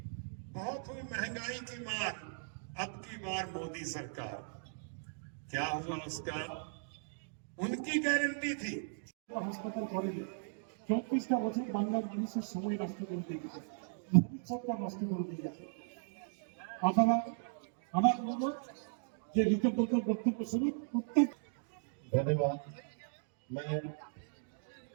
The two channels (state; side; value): silent; left; digital silence